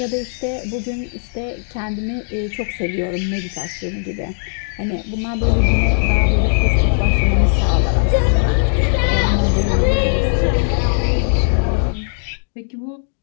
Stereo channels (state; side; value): silent; right; digital silence